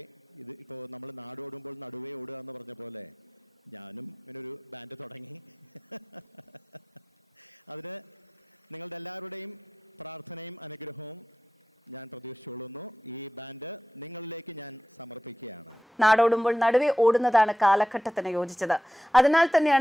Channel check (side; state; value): both; normal; correlation 0.91